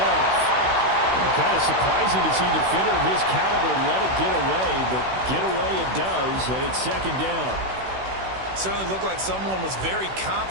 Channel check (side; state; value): left; late; 16 ms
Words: Kind of surprising to see a defender of his caliber let it get away, but get away it does, and it's 2nd down. Certainly looked like someone was very